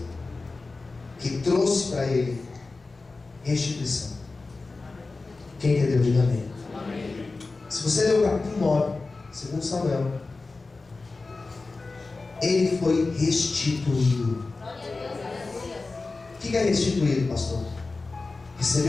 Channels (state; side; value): quieter; right; 3.7 dB